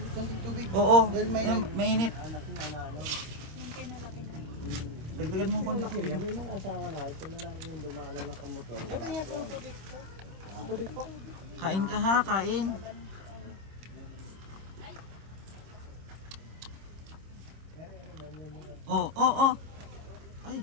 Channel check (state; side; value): late; left; 26 ms